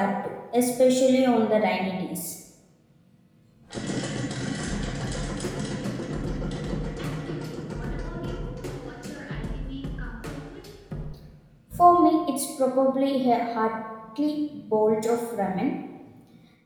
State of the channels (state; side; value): identical; both; correlation 1.00